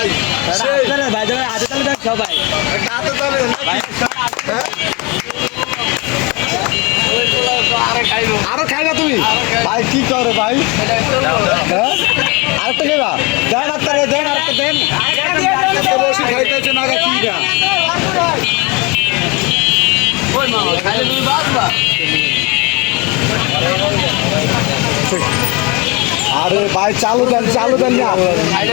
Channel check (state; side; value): quieter; right; 27.5 dB